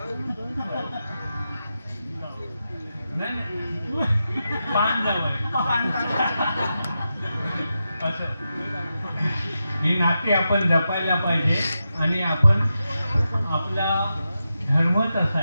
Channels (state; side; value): inverted; both; correlation -0.89